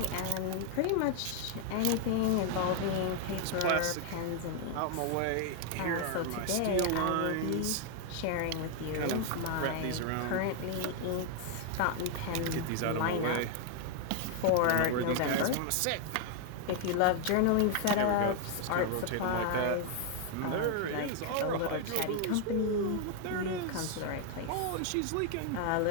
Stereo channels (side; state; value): both; different; correlation 0.00